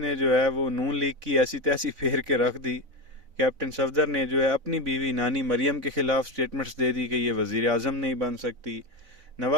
جو ہے وہ نون لیگ کی ایسی تیسی پھیر کے رکھ دی. کیپٹن صفدر نے جو ہے اپنی بیوی نانی مریم کے خلاف سٹیٹمنٹس دے دی کہ یہ وزیر اعظم نہیں بن سکتی.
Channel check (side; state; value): left; late; 4.0 ms